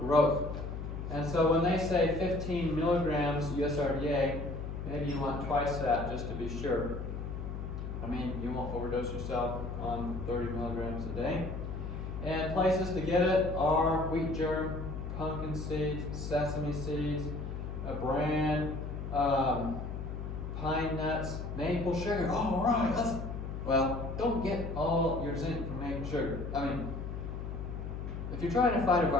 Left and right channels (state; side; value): noise; left; hum, 6 dB below the sound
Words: And so when they say 15 milligrams USRDA, maybe you want twice that just to be sure. I mean, you won't overdose yourself on 30 milligrams a day. And places to get it are wheat germ, pumpkin seeds, sesame seeds, bran, pine nuts, maple sugar. All right, well, don't get all your zinc from maple sugar. I mean, if you're trying to fight a